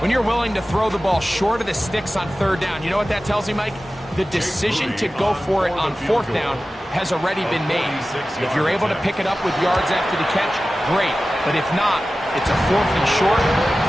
When you're willing to throw the ball short of the sticks on 3rd down, you know what that tells me, Mike? The decision to go for it on 4th down has already been made. If you're able to pick it up with yards after the catch, great. But if not, it's a 4th and short,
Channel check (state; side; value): normal; both; correlation 0.95